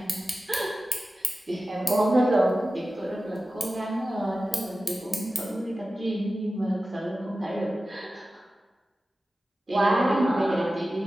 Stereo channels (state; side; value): normal; both; correlation 0.95